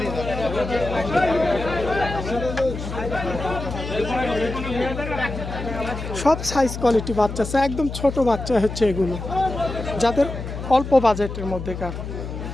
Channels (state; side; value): noise; left; hum, 7 dB below the sound